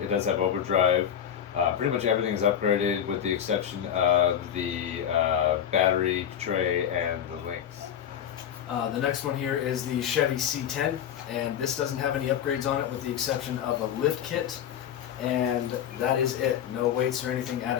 does have overdrive. Pretty much everything is upgraded with the exception of the battery tray and the links. The next one here is the Chevy C10, and this doesn't have any upgrades on it with the exception of a lift kit, and that is it. No weights or anything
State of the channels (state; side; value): quieter; right; 9.3 dB